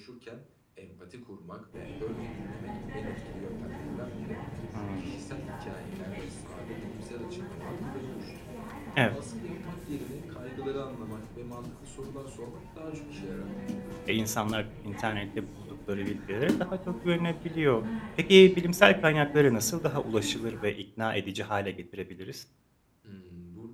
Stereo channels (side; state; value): both; identical; correlation 1.00